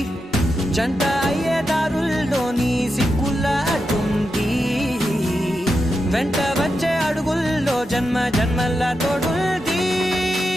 జంట అయ్యే దారుల్లోని సిగ్గుల అడ్డుంది వెంట వచ్చే అడుగుల్లో జన్మ జన్మల్ల తోడుల్ది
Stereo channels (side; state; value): both; normal; correlation 0.88